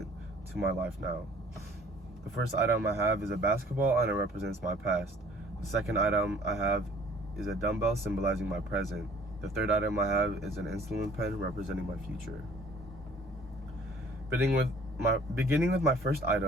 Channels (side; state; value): both; normal; correlation 0.54